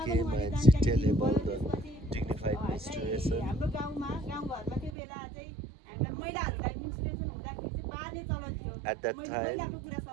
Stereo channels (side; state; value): left; drops out; at 4.9 s